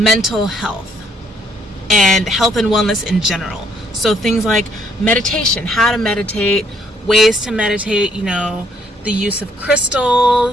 health and health and wellness in general. So things like meditation, how to meditate, ways to meditate, you know, the use of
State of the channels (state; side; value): normal; both; correlation 0.68